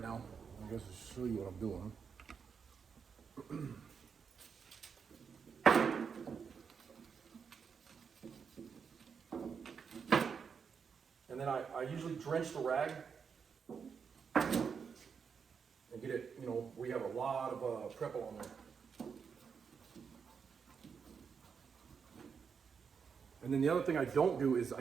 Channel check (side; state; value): left; quieter; 6.3 dB